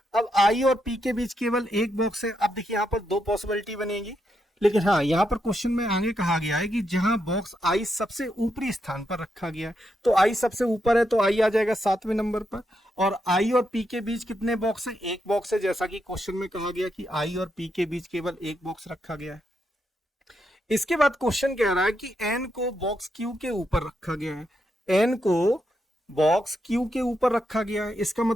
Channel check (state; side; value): normal; both; correlation 0.81